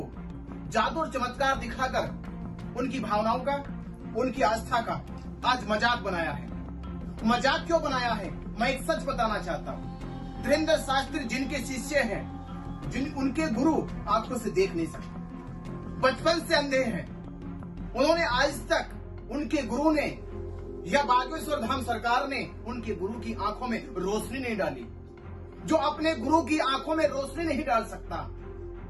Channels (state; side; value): identical; both; correlation 1.00